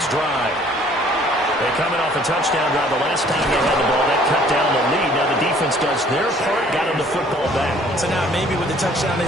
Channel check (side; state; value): both; normal; correlation 0.57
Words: drive. They're coming off a touchdown drive. The last time they had the ball, that cut down the lead. Now the defense does their part, got them the football back. So now maybe with the touchdown they